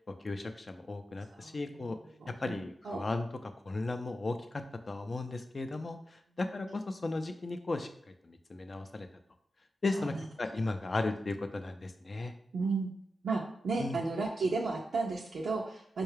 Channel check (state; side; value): normal; both; correlation 0.88